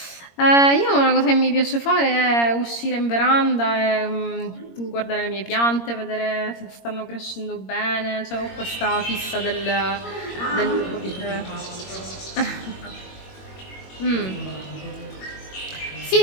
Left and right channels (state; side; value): late; right; 21 ms